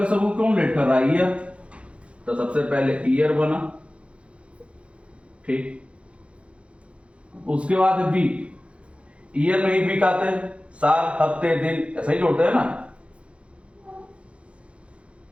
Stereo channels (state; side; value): late; left; 0.060 ms